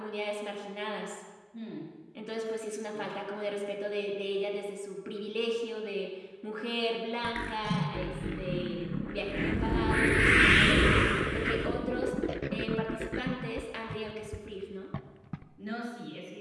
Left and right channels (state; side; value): identical; both; correlation 1.00